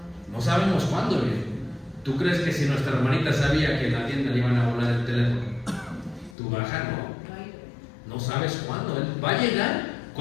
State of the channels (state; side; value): drops out; right; at 6.4 s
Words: No sabemos cuándo viene. ¿Tú crees que si nuestra hermanita sabía que en la tienda le iban a volar el teléfono, tú bajas? No sabes cuándo. Él va a llegar